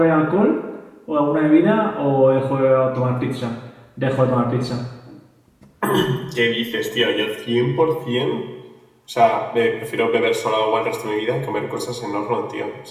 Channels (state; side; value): identical; both; correlation 1.00